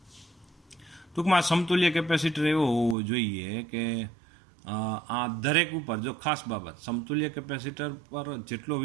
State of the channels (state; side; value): drops out; left; at 3.0 s